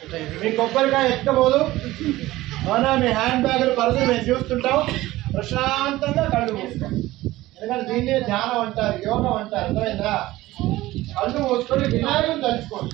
మీ కొబ్బరికాయ ఎక్కబోదు. అవునా? మీ హ్యాండ్ బ్యాగులు పరుదులు మేము చూస్తుంటాం. ప్రశాంతంగా కళ్ళు మూసుకోండి. ఎందుకంటే దీన్నే ధ్యానం అంటారు, యోగం అంటారు. అర్థమైందా? కళ్ళు మూసుకొని వినాయకుని తలుచుకోండి.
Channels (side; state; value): left; quieter; 17.2 dB